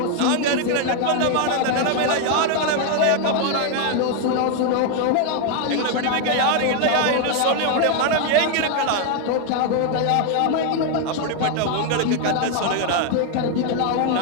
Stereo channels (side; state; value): both; different; correlation 0.01